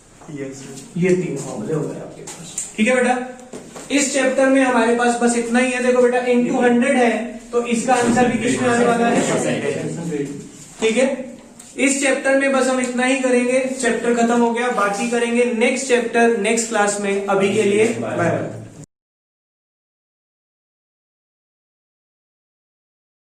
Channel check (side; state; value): both; identical; correlation 1.00